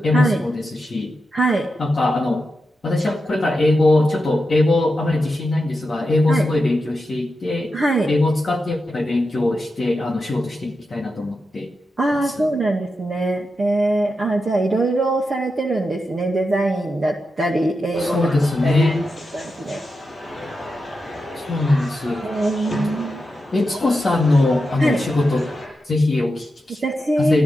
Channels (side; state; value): both; normal; correlation 0.89